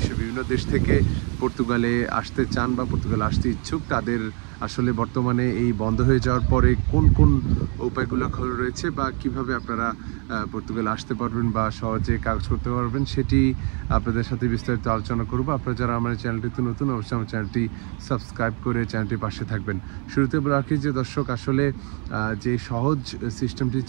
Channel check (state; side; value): quieter; left; 36.9 dB